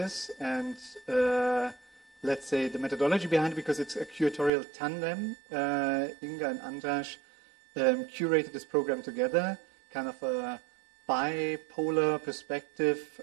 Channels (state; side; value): drops out; left; at 4.5 s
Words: and let's say the methodology behind it, because it's a curatorial tandem. Inga and Andras curated this program together, kind of a bipolar perspective